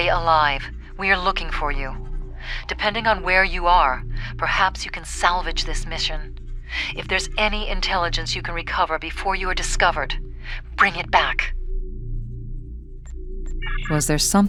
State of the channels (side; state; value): both; identical; correlation 1.00